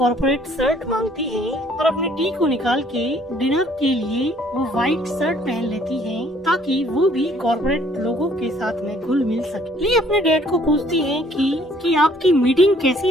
शर्ट मांगती है और अपने टी को निकाल के डिनर के लिए वो व्हाइट शर्ट पहन लेती है ताकि वो भी कॉर्पोरेट लोगों के साथ में घुल मिल सके। ली अपने डैड को पूछती है कि आपकी मीटिंग कैसी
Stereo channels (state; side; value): normal; both; correlation 0.60